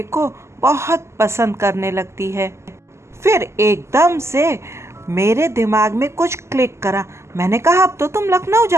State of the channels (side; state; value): left; late; 0.13 ms